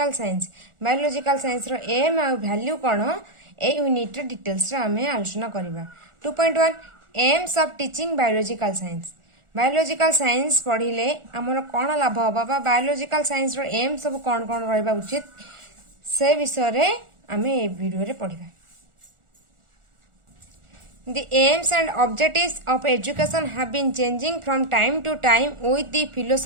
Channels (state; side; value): late; left; 1.4 ms